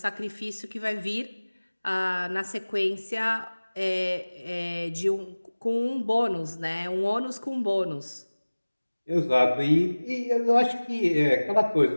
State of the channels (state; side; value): inverted; both; correlation -1.00